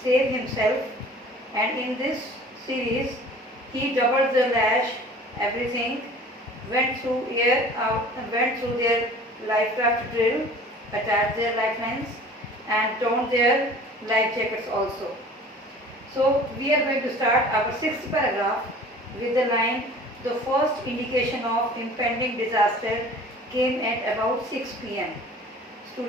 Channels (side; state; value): both; normal; correlation 0.45